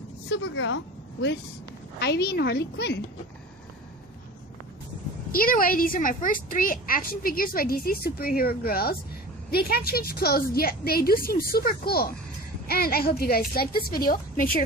Supergirl with Ivy and Harley Quinn. Either way, these are my first 3 action figures by DC superhero girls. They can't change clothes, yet they do seem super cool. And I hope you guys liked this video. Make sure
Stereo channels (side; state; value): both; normal; correlation 0.37